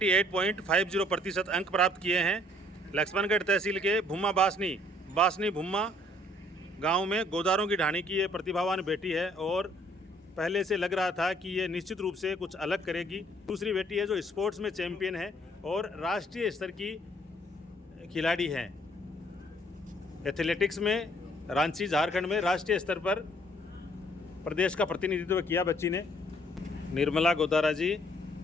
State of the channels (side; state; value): both; normal; correlation 0.62